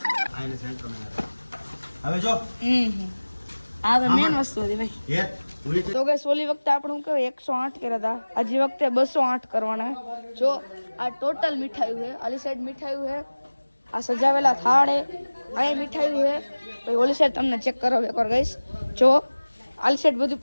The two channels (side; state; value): both; inverted; correlation -1.00